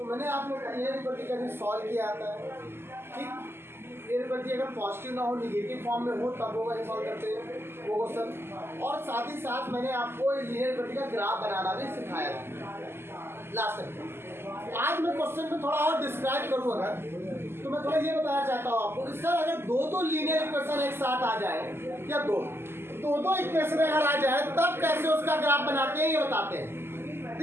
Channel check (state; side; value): late; left; 0.12 ms